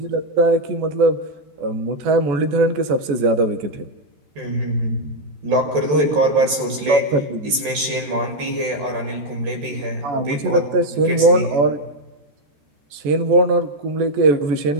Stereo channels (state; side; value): late; left; 14 ms